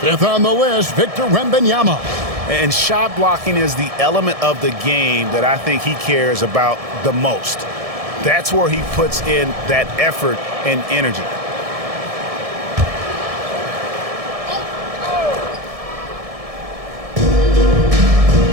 on the list, Victor Wembanyama. And shot blocking is the element of the game that I think he cares about the most. That's where he puts in that effort and energy.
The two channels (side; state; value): left; late; 1.7 ms